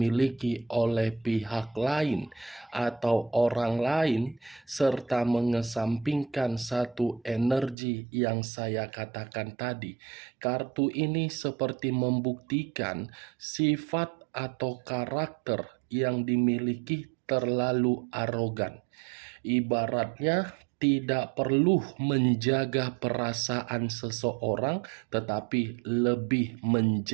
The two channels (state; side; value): drops out; left; at 7.8 s